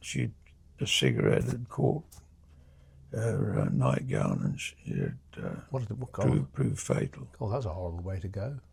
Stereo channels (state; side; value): identical; both; correlation 1.00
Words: a cigarette had caught her nightgown, and she had proved fatal. Oh, that's a horrible way to go.